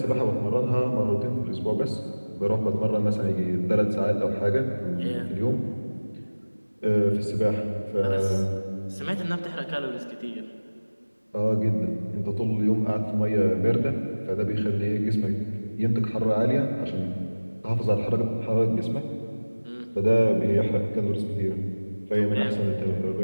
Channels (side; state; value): both; inverted; correlation -1.00